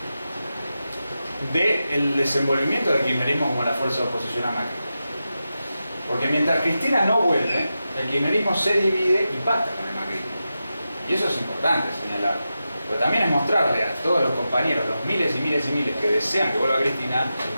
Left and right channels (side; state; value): both; inverted; correlation -0.91